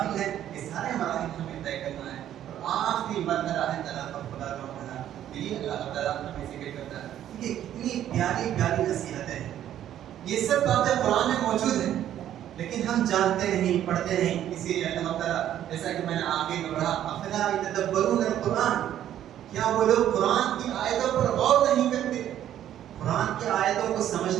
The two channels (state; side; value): quieter; left; 11.3 dB